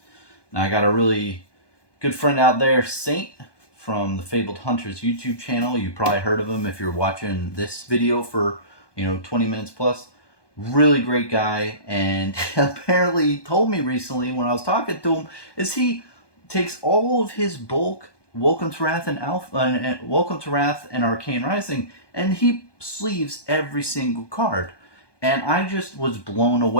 Now I got a really good friend out there, Saint, from the Fabled Hunters YouTube channel. You probably heard of him if you're watching this video for 20 minutes plus. Really great guy, and apparently told me recently when I was talking to him is he takes all of his bulk Welcome to Wrath and Alpha and Welcome to Wrath and Arcane Rising, and he sleeves every single card. And I just was blown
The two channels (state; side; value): late; right; 1.2 ms